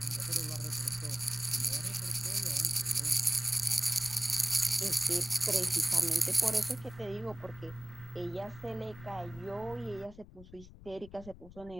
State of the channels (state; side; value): noise; left; rumble, 18 dB below the sound